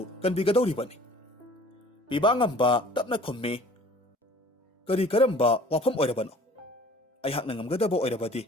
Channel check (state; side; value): normal; both; correlation 0.50